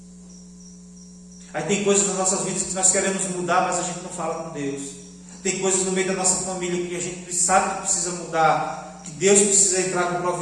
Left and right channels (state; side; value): identical; both; correlation 1.00